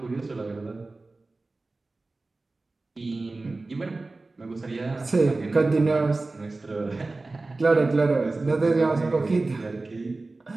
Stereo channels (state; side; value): quieter; left; 3.3 dB